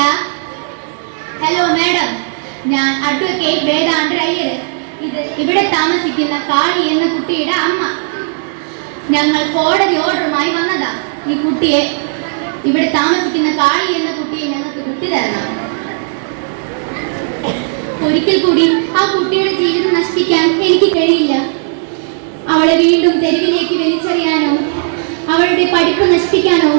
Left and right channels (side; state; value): left; silent; digital silence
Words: ഹലോ മാഡം, ഞാൻ അഡ്വക്കേറ്റ് വേദാന്തർ അയ്യർ. ഇത് ഇവിടെ താമസിക്കുന്ന കാളി എന്ന കുട്ടിയുടെ അമ്മ. ഞങ്ങൾ കോടതി ഓർഡറുമായി വന്നതാ. ഈ കുട്ടിയെ, ഇവിടെ താമസിക്കുന്ന കാളി എന്ന കുട്ടിയെ ഞങ്ങൾക്ക് വിട്ടു തരണം. ഒരിക്കൽ കൂടി ആ കുട്ടിയുടെ ജീവിതം നശിപ്പിക്കാൻ എനിക്ക് കഴിയില്ല. അവളെ വീണ്ടും തെരുവിലേക്ക് വലിച്ചെറിയാനോ അവളുടെ പഠിപ്പ് നശിപ്പിക്കാനോ